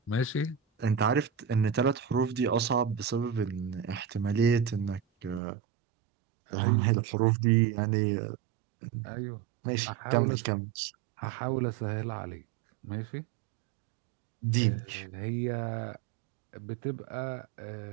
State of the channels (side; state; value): left; drops out; at 5.4 s